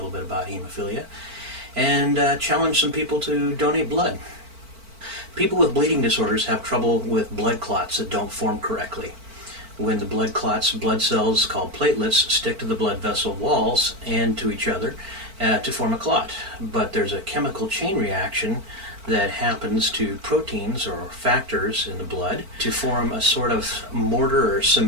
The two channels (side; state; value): left; late; 4.5 ms